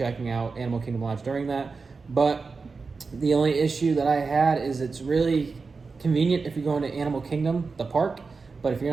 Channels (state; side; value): quieter; left; 4.5 dB